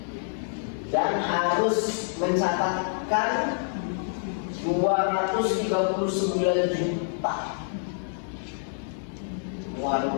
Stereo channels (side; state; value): right; silent; digital silence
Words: Dan harus mencatatkan 239 juta